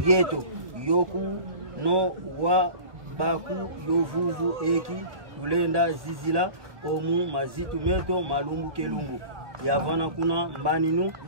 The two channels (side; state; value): left; late; 1.5 ms